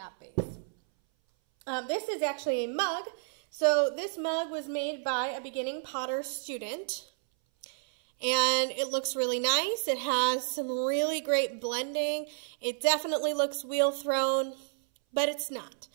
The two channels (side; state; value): left; silent; 57 dB below the other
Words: base. This is actually a mug. So this mug was made by a beginning potter student, and it looks really nice. It has some really great blending. It definitely looks wheel thrown, but it's not.